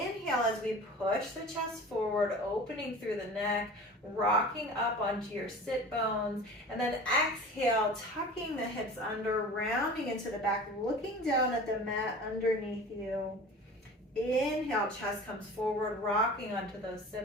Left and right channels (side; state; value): both; normal; correlation 0.39